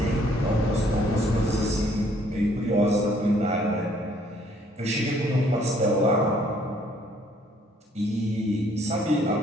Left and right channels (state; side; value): normal; both; correlation 0.63